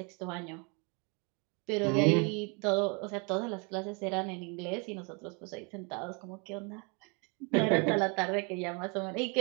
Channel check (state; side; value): quieter; left; 32.8 dB